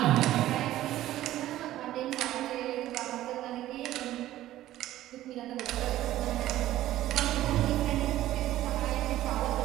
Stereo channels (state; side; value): quieter; left; 14.3 dB